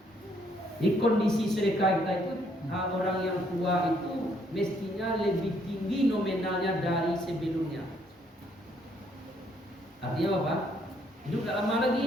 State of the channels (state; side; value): normal; both; correlation 0.68